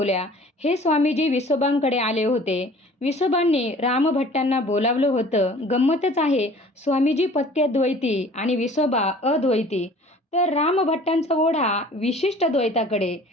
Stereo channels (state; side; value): normal; both; correlation 0.48